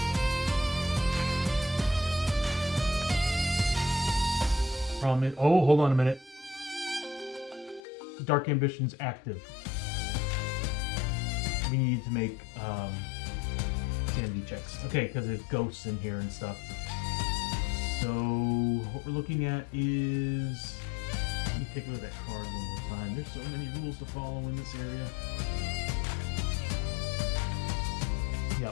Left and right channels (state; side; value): drops out; right; at 7.8 s